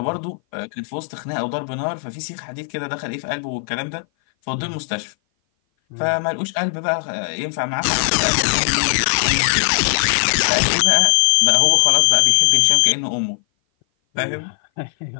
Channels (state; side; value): silent; right; 58 dB below the other